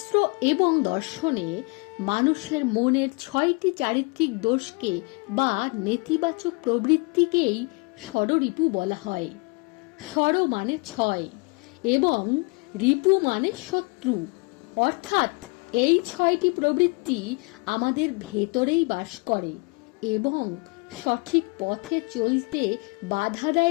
এবং দর্শনে মানুষের মনের 6টি চারিত্রিক দোষকে বা নেতিবাচক প্রবৃত্তিকেই ষড়রিপু বলা হয়। ষড় মানে 6 এবং রিপু মানে শত্রু, অর্থাৎ এই 6টি প্রবৃত্তি আমাদের ভেতরেই বাস করে এবং সঠিক পথে চলতে বাধা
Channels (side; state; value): right; quieter; 30.6 dB